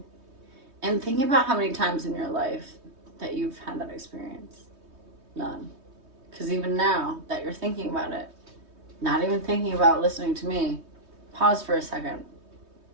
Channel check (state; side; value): late; left; 3.2 ms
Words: And think about how many times in your life that you've had that experience. None. Because even now that you're thinking about it, not even thinking about listening to me, pause for a second.